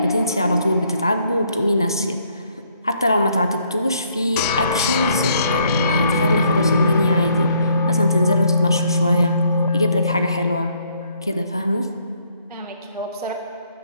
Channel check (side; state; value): both; inverted; correlation -0.68